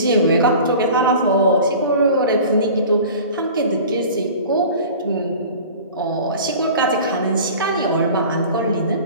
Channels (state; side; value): inverted; both; correlation -0.40